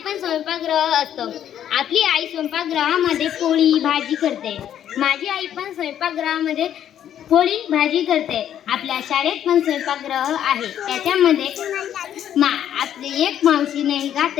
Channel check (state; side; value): quieter; right; 10.3 dB